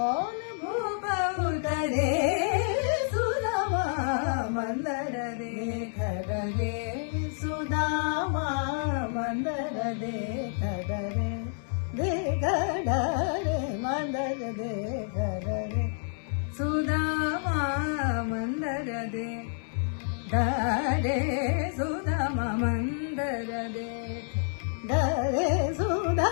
भूप उतरे सुदामा, मंदर देखत रे सुदामा, मंदर देखत रे, देखत रे मंदर देखत रे सुदामा, मंदर देखत रे सुदामा, मंदर देखत रे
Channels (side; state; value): right; silent; digital silence